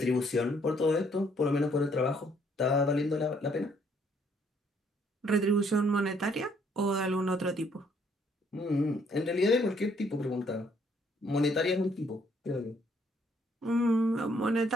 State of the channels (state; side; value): normal; both; correlation 0.66